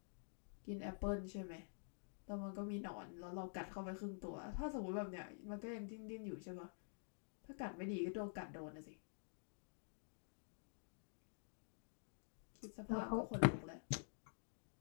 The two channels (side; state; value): right; silent; digital silence